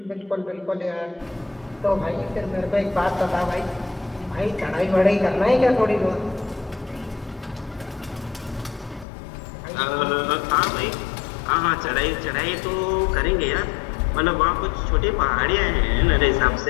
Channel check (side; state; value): right; drops out; at 9.1 s